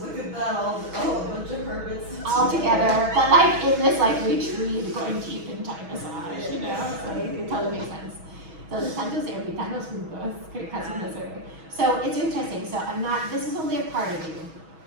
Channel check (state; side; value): late; left; 6.2 ms